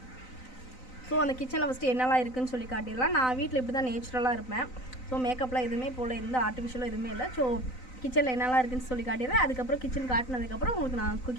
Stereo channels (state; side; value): late; right; 3.9 ms